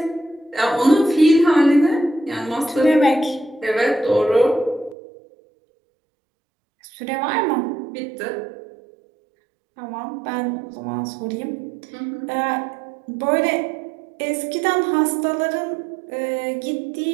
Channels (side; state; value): left; drops out; at 5.0 s